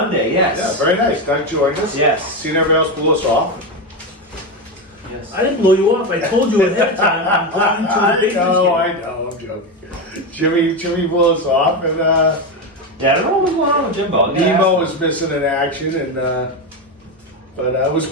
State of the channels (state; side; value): normal; both; correlation 0.13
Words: yes. Yeah, very nice. Doug joined us. Yes. Seen everybody else blew us off. Yes. I didn't blow you off. I told you ahead of time I'm going to the Patriots I game. know, I'm joking. Jimmy blew us off, and Yeah, I don't know what's going on with Jimbo. Nemo was missing in action, and but it was